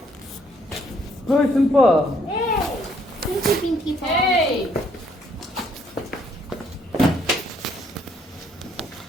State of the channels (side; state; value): both; normal; correlation 0.67